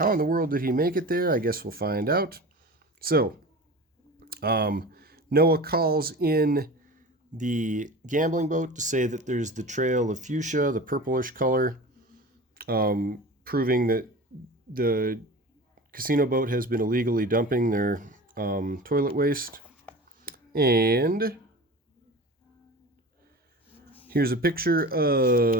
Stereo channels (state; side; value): normal; both; correlation 0.34